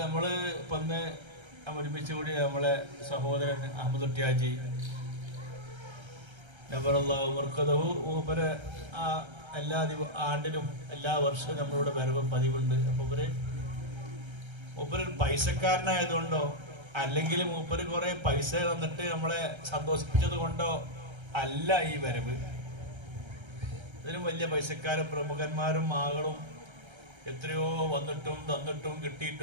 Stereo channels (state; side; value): late; left; 1.3 ms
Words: നമ്മൾ ഇപ്പം ഒന്ന് ഒരുമിച്ച് കൂടി നമ്മളെ സഹോദരൻ അഹമ്മദ് കുട്ടിയാജി നബറല്ലാഹു മർക്കദഹു മൂപ്പര് എല്ലാ ആണ്ടിലും എല്ലാ വർഷവും നമ്മളിവിടെ വരവ് പതിവുണ്ട്. അപ്പോൾ മൂപ്പര് പൈസക്കാരനായതുകൊണ്ടോ അല്ലെങ്കിൽ മൂപ്പര് കുറേ പൈസ തന്നിട്ട് നമ്മളെ സന്തോഷിപ്പിച്ചത് കൊണ്ടോ അല്ല ഈ വരവ്. ഇതിനും വലിയ പൈസക്കാരും പ്രമുഖന്മാരും ആളുകളും എത്രയോ വന്നിട്ടും തന്നിട്ടും